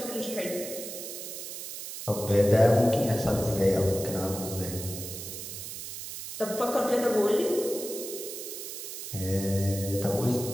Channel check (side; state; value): right; noise; hiss, 8 dB below the sound